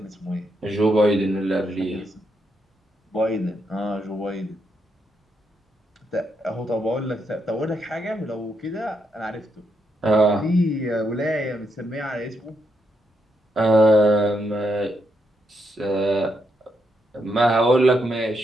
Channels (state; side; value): normal; both; correlation 0.80